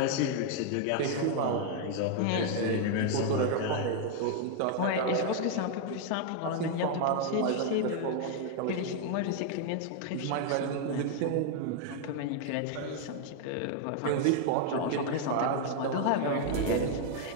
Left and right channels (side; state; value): both; different; correlation 0.00